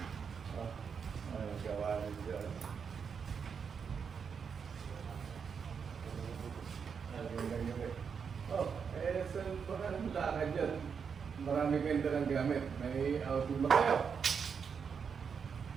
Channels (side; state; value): left; quieter; 6.4 dB